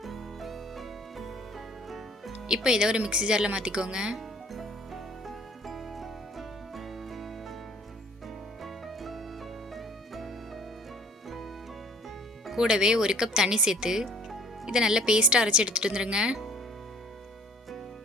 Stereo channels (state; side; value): normal; both; correlation 0.53